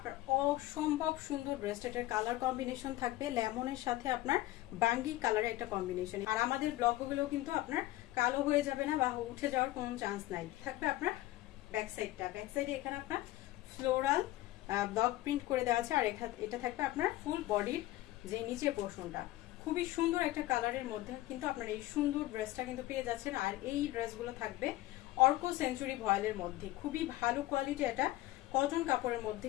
অসম্ভব সুন্দর ড্রেসটার কালার কম্বিনেশন থাকবে লেমনের সাথে আপনার বাঙ্গি কালারের একটা কম্বিনেশন। আর আমাদের ব্লকগুলো কিন্তু আপনার কালো হয়ে যাবে না বা উঠে যাওয়ার কোনো চান্স নাই। থাকবে আপনার ব্যাক সাইডে এখানে আপনার ফ্লোরাল ব্লক প্রিন্ট করে দেওয়া আছে। আর এটা থাকবে আপনার ফুল বডির যে নিচে পোর্শনটা খুবই সুন্দর একটা কালারের মধ্যে কিন্তু আপনার এই সুন্দর ড্রেসটা কিন্তু পেয়ে যাচ্ছেন। আর এই ড্রেসগুলো থাকবে অর্ক সেঞ্চুরি ভয়েলের মধ্যে, খুবই ভালো কোয়ালিটি এটা কটন কাপড়ের মধ্যে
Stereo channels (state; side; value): quieter; right; 16.7 dB